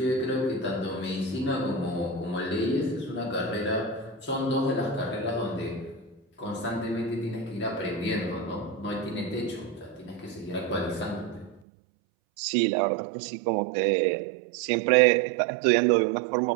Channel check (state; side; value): drops out; left; at 11.6 s